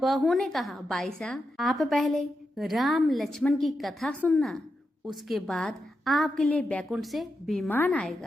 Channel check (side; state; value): both; normal; correlation 0.87